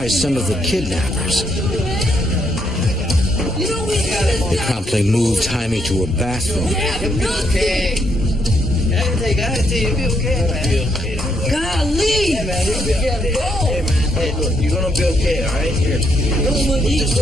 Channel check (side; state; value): both; normal; correlation 0.75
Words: some of the kidnappers. They promptly moved Jaime to a bathroom. Okay. Golly! Hey, look, you're gonna be okay, all right? Here. Put this